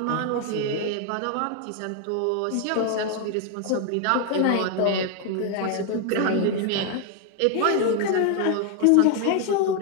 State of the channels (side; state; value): both; different; correlation 0.00